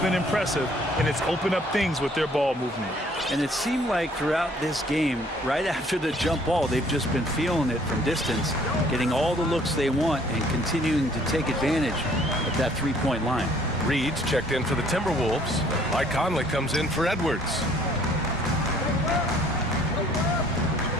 impressive, and it's opened up things with their ball movement. And it seemed like throughout this game, right after the jump ball, they've just been feeling it from distance, getting all the looks they want and continuing to take advantage of that three-point line. Reed's checked in for the Timberwolves. Mike Conley comes in for Edwards.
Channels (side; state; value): both; normal; correlation 0.59